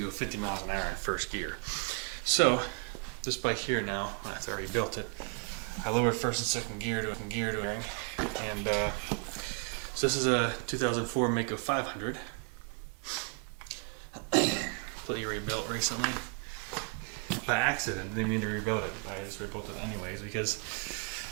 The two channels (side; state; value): left; quieter; 35.4 dB